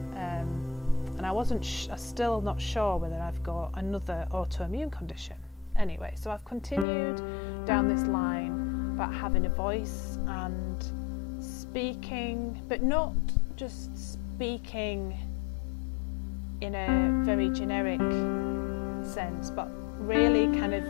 and I'm still not sure whether I've got another autoimmune condition. Anyway, so I've continued down this line about having a voice and speaking, but not just speaking in a very generic sense, but really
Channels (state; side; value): drops out; right; at 6.9 s